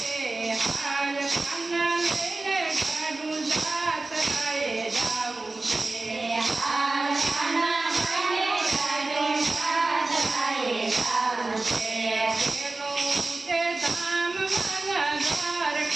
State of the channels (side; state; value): left; quieter; 3.2 dB